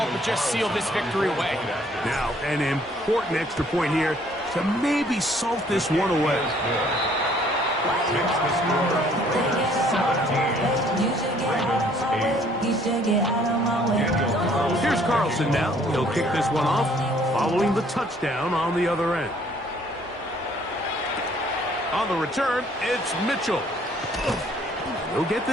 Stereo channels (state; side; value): normal; both; correlation 0.61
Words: but just seal this victory away. Now, an important extra point here to maybe salt this one away. Takes the score. 17. Here's Carlson now. He'll kick this one off following the touchdown on the other end. On the return, it's Mitchell. They'll get